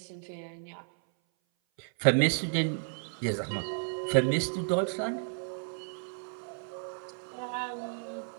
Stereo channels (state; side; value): silent; left; 56 dB below the other